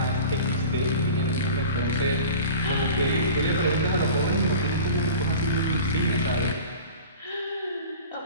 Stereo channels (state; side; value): inverted; both; correlation -0.39